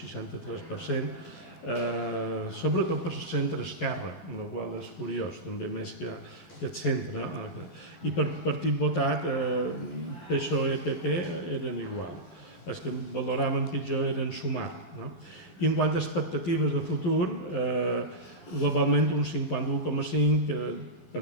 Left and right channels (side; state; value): right; late; 12 ms